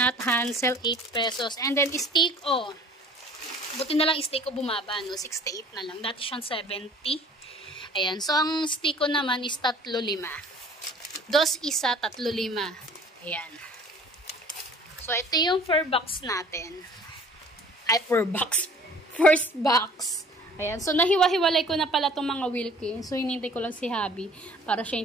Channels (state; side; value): normal; both; correlation 0.50